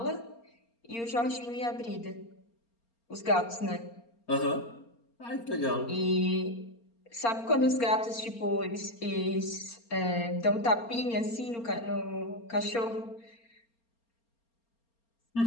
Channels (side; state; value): right; late; 4.3 ms